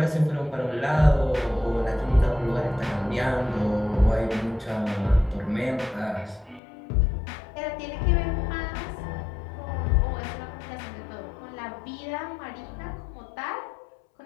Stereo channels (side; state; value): right; drops out; at 6.6 s